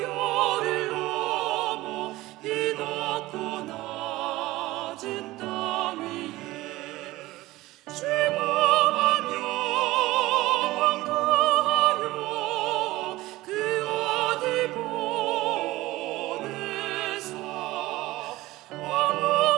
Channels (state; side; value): quieter; left; 18.3 dB